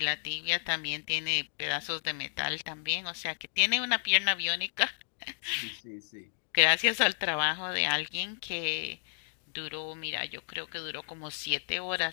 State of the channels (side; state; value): right; silent; digital silence